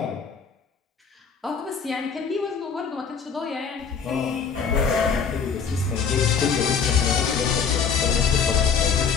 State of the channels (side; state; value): right; quieter; 6.2 dB